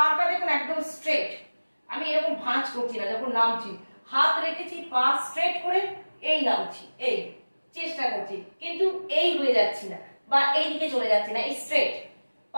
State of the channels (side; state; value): both; inverted; correlation -1.00